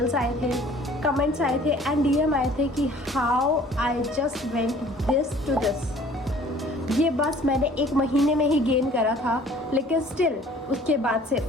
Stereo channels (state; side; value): normal; both; correlation 0.52